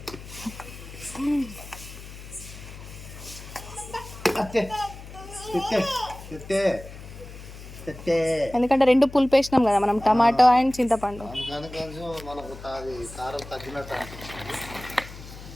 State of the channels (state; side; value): noise; left; hum, 14 dB below the sound